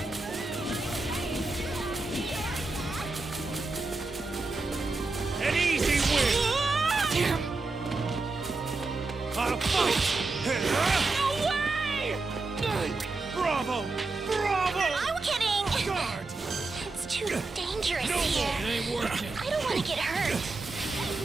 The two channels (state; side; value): quieter; left; 3.5 dB